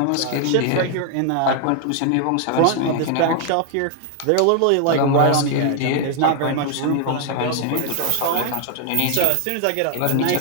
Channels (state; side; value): different; both; correlation 0.00